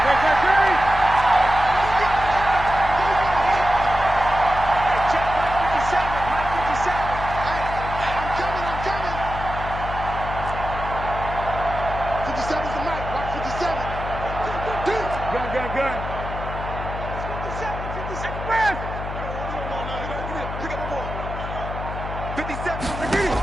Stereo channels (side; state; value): left; noise; hum, 7 dB below the sound